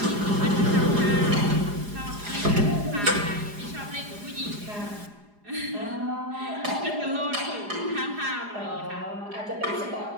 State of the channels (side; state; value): left; late; 4.9 ms